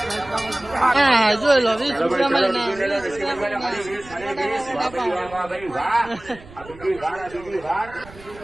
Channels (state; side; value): noise; right; rumble, 20 dB below the sound